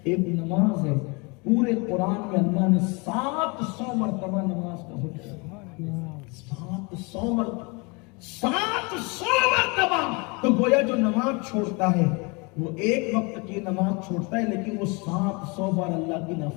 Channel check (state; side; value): quieter; right; 29.4 dB